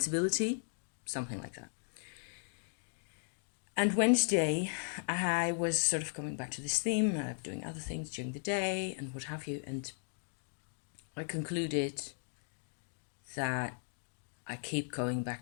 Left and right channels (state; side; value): silent; right; digital silence